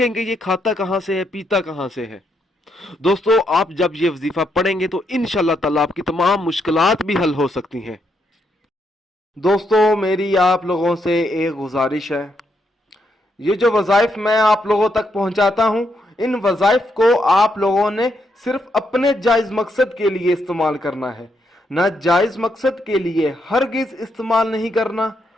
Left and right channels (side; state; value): both; normal; correlation 0.78